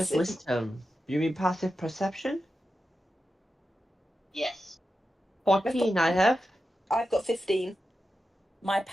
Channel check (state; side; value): normal; both; correlation 0.90